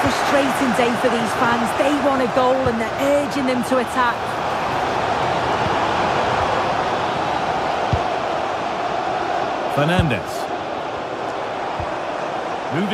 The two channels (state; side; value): identical; both; correlation 1.00